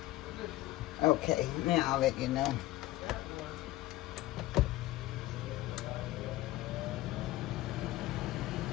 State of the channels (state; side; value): quieter; right; 17.0 dB